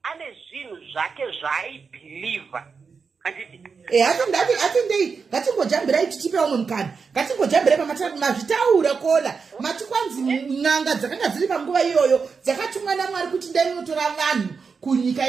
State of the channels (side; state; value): left; quieter; 5.3 dB